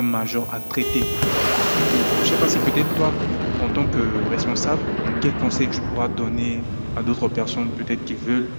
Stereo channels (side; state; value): both; inverted; correlation -1.00